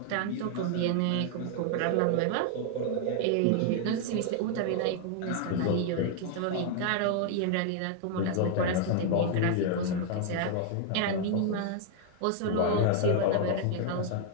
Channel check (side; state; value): both; different; correlation 0.00